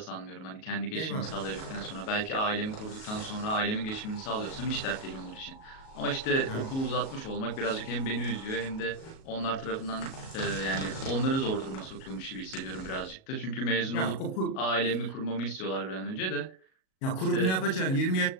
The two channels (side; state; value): right; late; 37 ms